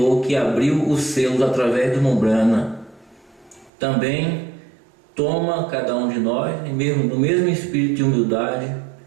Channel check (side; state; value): left; drops out; at 3.7 s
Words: que abriu os selos através do Membrana, também toma cada um de nós no mesmo espírito de humildade,